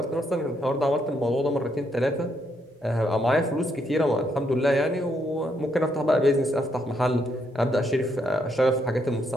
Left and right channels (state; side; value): normal; both; correlation 0.76